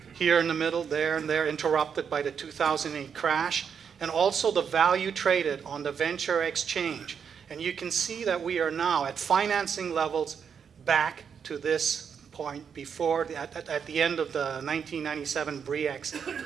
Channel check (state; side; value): quieter; left; 7.0 dB